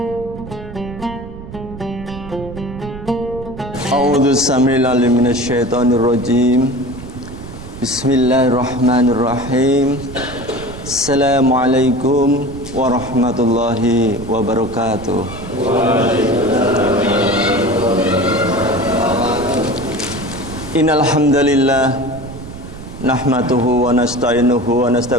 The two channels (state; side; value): noise; right; rumble, 13 dB below the sound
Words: A'udzu samii'al minasyaitonir rajim. Bismillahirrahmanirrahim. Assalamualaikum warahmatullahi wabarakatuh. Innal hamdalillah nahmaduhu wa nasta'inuhu wa